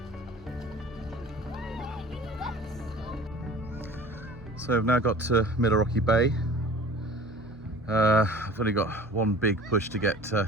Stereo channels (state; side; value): noise; right; hum, 22 dB below the sound